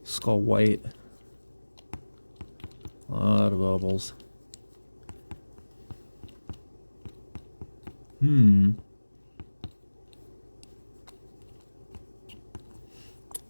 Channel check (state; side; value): inverted; both; correlation -1.00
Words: Skull White. A lot of bubbles.